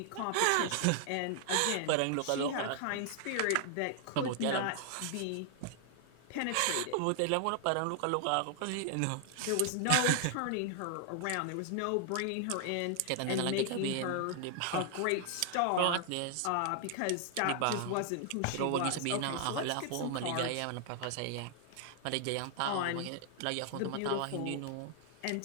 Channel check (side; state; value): both; different; correlation 0.00